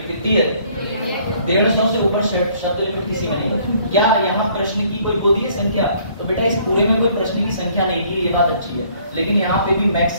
कितनी है? 150 से ऊपर शब्द लिमिट किसी का नहीं। क्या यहाँ प्रश्न की कोई वो दी है संख्या? तो बेटा इस पूरे में कोई प्रश्न की संख्या नहीं दी है, ये बात अच्छी है, लेकिन यहाँ पे भी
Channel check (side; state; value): both; inverted; correlation -0.61